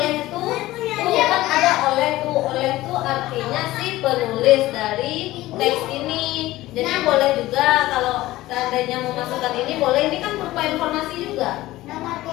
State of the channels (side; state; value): right; quieter; 17.0 dB